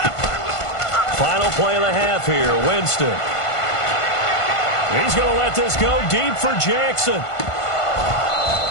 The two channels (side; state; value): right; late; 1.5 ms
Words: Final play of the half here, Winston. He's going to let this go deep for Jackson.